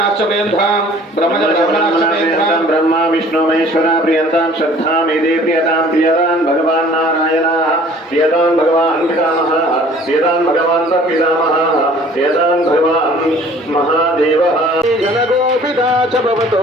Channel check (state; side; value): normal; both; correlation 0.52